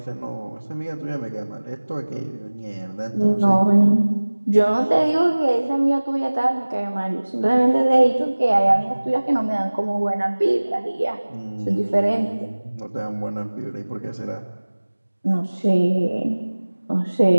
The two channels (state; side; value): inverted; both; correlation -1.00